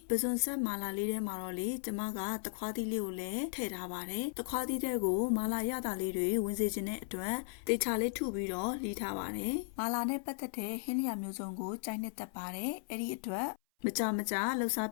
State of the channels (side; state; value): right; silent; 54 dB below the other